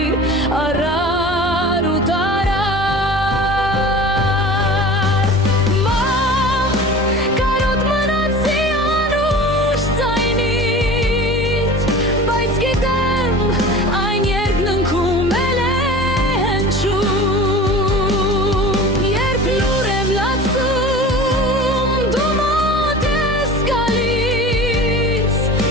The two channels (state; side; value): normal; both; correlation 0.38